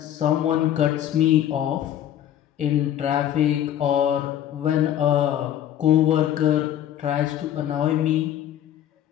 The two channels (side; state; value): right; quieter; 11.0 dB